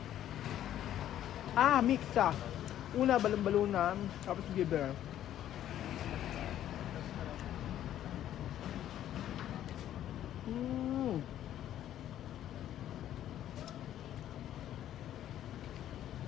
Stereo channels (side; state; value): right; quieter; 11.7 dB